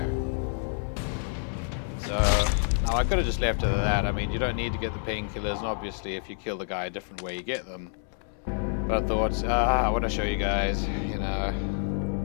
So, now I could have just left it at that. I mean, you don't need to get the painkillers, and obviously if you kill the guy a different way, you get them. But I thought, I want to show you guys, you know.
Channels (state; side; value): silent; right; 59 dB below the other